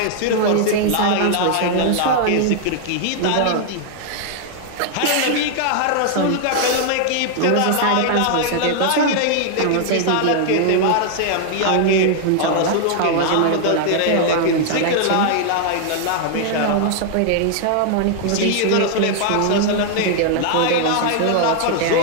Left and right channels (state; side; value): different; both; correlation 0.00